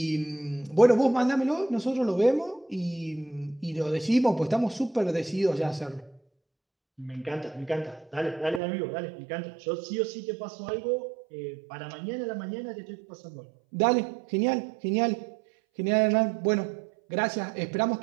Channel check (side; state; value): left; drops out; at 8.6 s